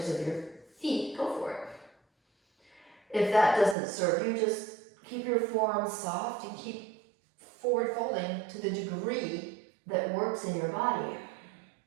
of your feet, go for it. If that doesn't serve you, just keep your forearms soft and keep forward folding to the degree that works in your body.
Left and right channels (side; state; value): left; drops out; at 3.8 s